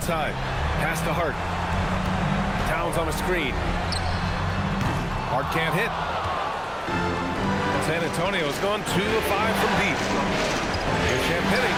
Pass to Hart. Towns on a screen. Hart can't hit. San Antonio's gone 2 of 5 from deep. Here's Champagny.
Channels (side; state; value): both; identical; correlation 1.00